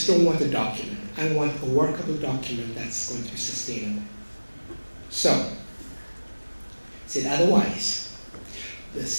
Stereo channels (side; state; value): both; inverted; correlation -1.00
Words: don't want a document. I want a workable document that's going to be sustainable. So, he said, otherwise, the